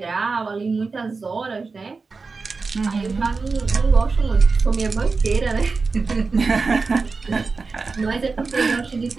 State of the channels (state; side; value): quieter; left; 4.3 dB